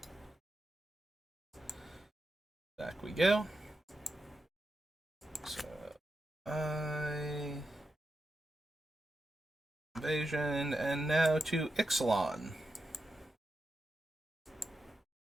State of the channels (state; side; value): normal; both; correlation 0.88